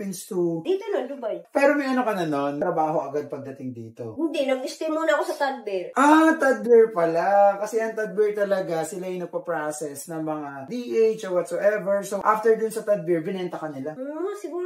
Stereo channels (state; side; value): identical; both; correlation 1.00